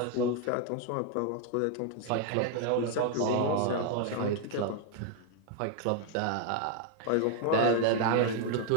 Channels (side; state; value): both; different; correlation 0.00